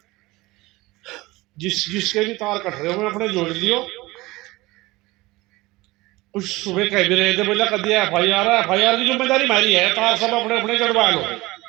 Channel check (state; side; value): quieter; left; 20.6 dB